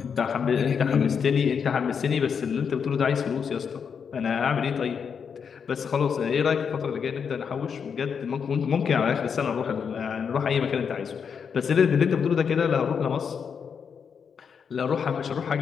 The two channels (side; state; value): right; quieter; 6.7 dB